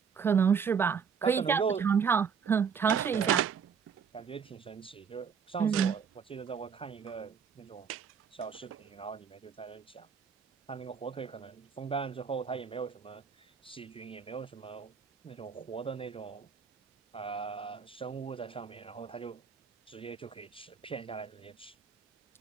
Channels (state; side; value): quieter; left; 6.6 dB